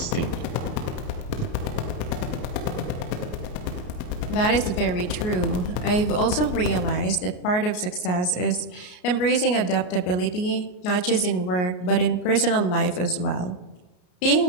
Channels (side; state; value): right; late; 33 ms